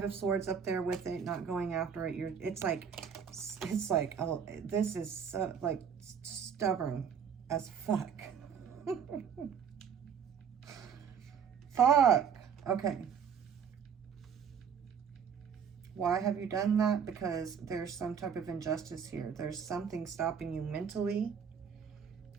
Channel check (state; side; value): quieter; left; 7.2 dB